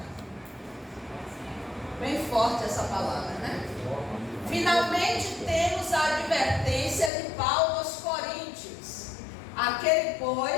Bem forte essa palavra, né? Finalmente temos a advertência de Paulo aos Coríntios. Aquele,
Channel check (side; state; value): right; drops out; at 7.1 s